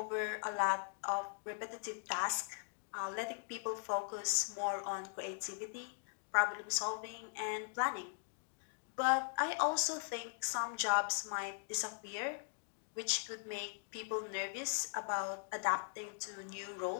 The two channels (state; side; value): silent; right; digital silence